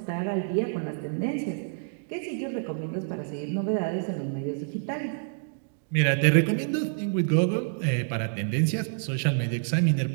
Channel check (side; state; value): left; silent; digital silence